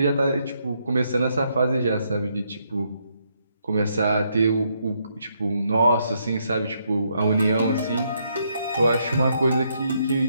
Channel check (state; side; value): inverted; both; correlation -0.76